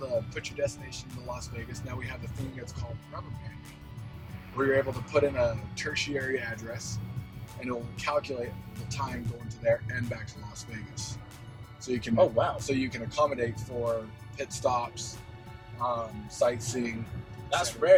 put your destination into Las Vegas. Now we have the thing that's called rubber banding, where you're able to put in a tertiary address, and it will calculate the time going to there and back to Las Vegas. So you can. Oh wow. So you can accommodate for pit stops, sightseeing. That's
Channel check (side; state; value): both; identical; correlation 1.00